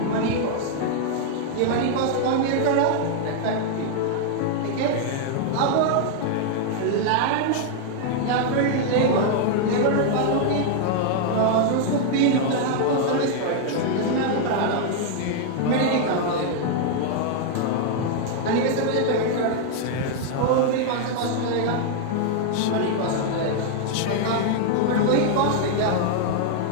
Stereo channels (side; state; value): both; different; correlation 0.00